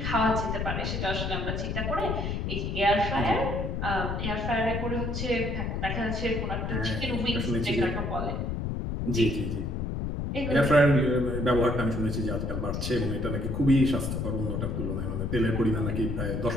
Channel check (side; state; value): left; noise; rumble, 2 dB below the sound